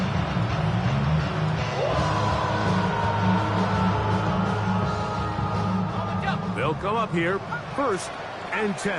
They'll come up here, 1st and 10.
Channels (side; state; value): both; identical; correlation 1.00